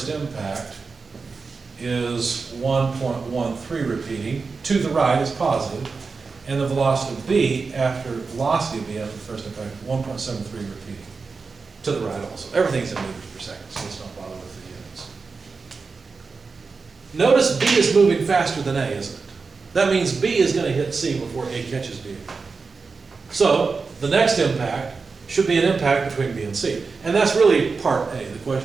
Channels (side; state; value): left; quieter; 4.6 dB